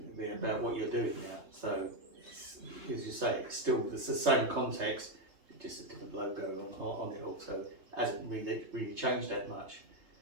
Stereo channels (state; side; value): late; left; 3.3 ms